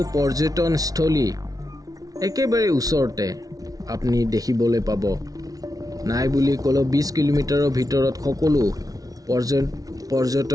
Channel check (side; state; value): left; late; 0.18 ms